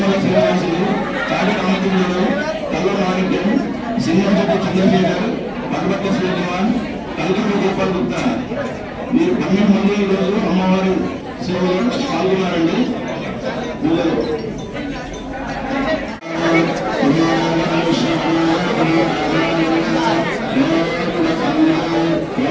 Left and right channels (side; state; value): both; identical; correlation 1.00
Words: శ్రీనివాసులు, కాడి రామచంద్రుడు, కల్ల మాణిక్యం, సింహంశెట్టి చంద్రశేఖర్, పల్వట్ల శ్రీకుమార్, కల్కూరు గోపాల్ గుప్తా, మీరు 12 మంది ఈరోజు అమ్మవారి సేవలో పాల్గొన్నారండి. పూజలు